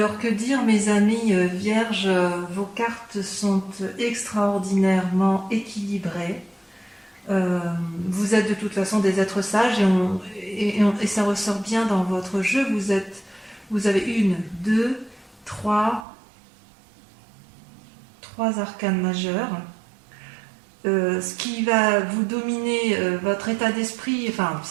que dire, mes amis vierges, vos cartes sont extraordinairement équilibrées. Vous êtes de toute façon des êtres sages, et ça ressort bien dans votre jeu. Vous avez 3 arcanes majeures. Ce qui va vous dominer votre état d'esprit, enfin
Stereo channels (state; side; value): drops out; left; at 16.1 s